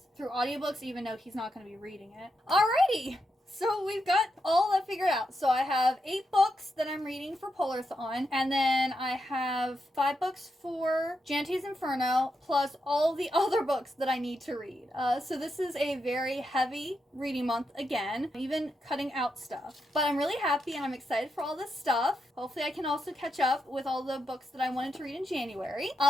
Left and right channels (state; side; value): normal; both; correlation 0.84